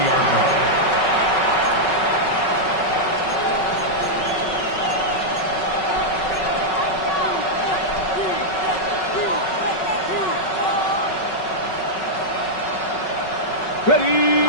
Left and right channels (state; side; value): late; right; 5.4 ms